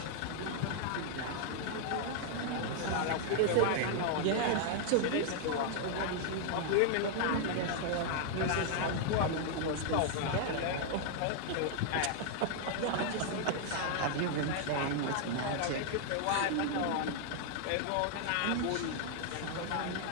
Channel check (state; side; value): different; both; correlation -0.01